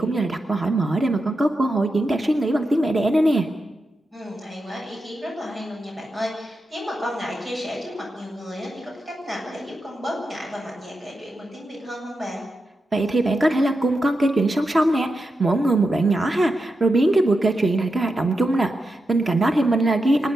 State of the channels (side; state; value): both; normal; correlation 0.88